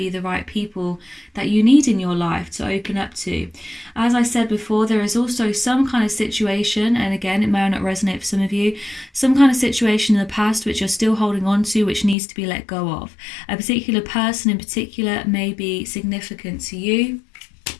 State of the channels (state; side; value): drops out; right; at 12.2 s